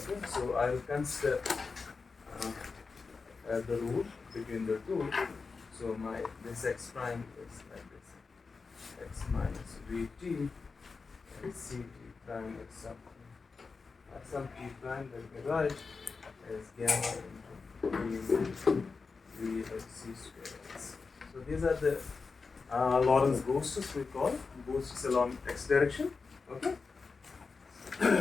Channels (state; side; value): quieter; right; 4.6 dB